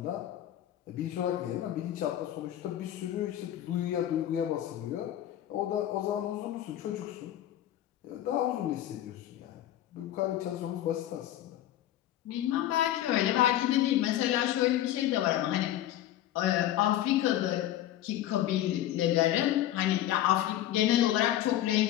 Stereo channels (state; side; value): quieter; right; 12.7 dB